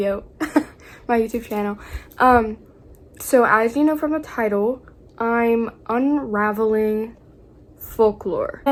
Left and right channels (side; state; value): both; identical; correlation 1.00